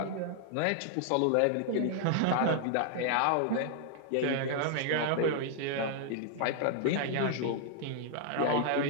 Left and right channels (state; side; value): different; both; correlation 0.00